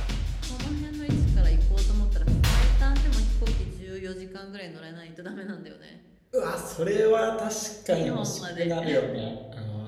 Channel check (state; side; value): identical; both; correlation 1.00